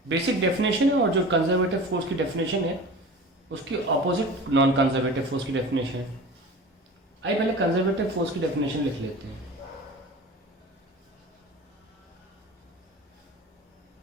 Basic definition है और जो कंजर्वेटिव फोर्स की डेफिनेशन है उसकी ऑपोजिट नॉन कंजर्वेटिव फोर्स की डेफिनेशन है. आइए पहले कंजर्वेटिव फोर्स की डेफिनेशन लिख लेते हैं.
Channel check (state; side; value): normal; both; correlation 0.36